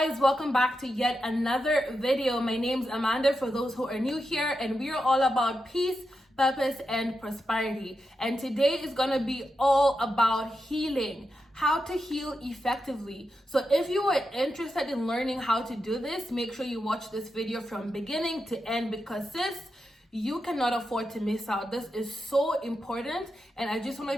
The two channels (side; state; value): both; normal; correlation 0.87